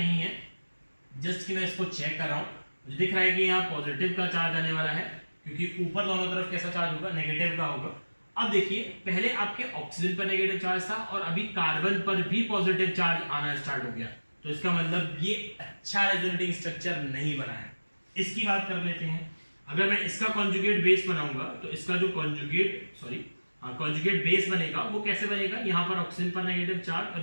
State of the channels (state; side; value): inverted; both; correlation -1.00